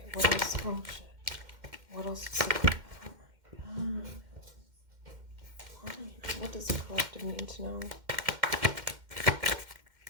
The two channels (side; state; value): left; late; 2.1 ms